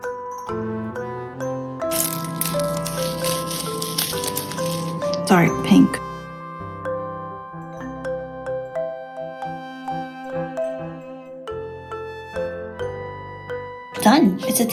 Dark pink. Done! It's a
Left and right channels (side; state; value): both; identical; correlation 1.00